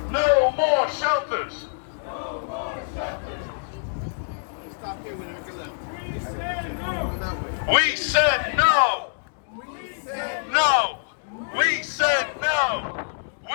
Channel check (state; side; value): silent; right; digital silence